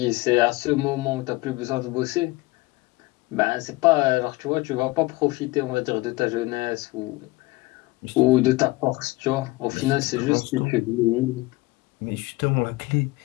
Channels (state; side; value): quieter; right; 21.4 dB